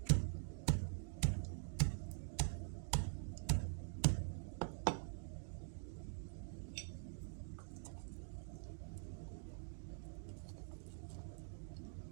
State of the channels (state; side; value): silent; left; digital silence